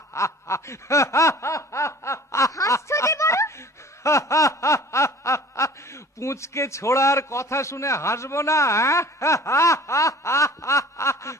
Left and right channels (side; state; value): both; normal; correlation 0.46